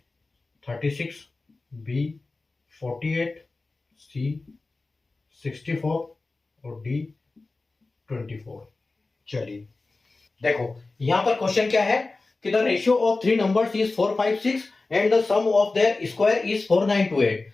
36, बी 48, सी 64 और डी 24। चलिए देखो, यहां पर क्वेश्चन क्या है कि the ratio of 3 numbers is 4, 5, 6 and the sum of their square is 4,928।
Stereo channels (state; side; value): quieter; right; 3.5 dB